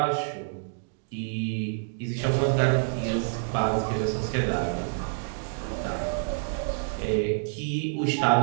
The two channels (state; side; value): silent; left; digital silence